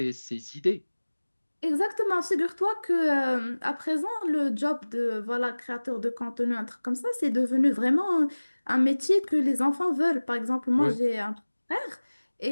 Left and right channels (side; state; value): both; inverted; correlation -1.00